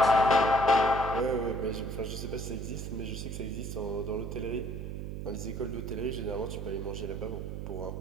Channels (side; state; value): right; noise; hum, 6 dB below the sound